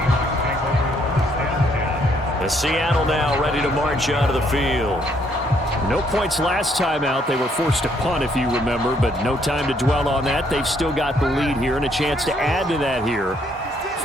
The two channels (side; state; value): both; normal; correlation 0.69